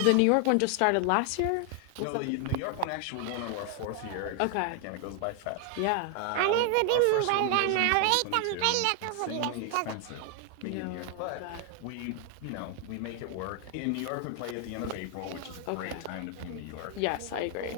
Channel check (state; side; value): different; both; correlation 0.00